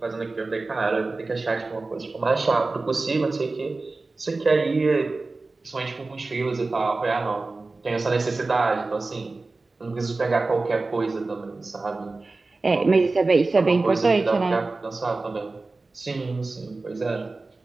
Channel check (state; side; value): quieter; left; 3.5 dB